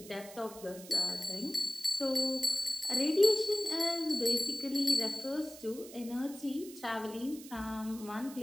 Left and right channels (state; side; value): noise; right; hiss, 16 dB below the sound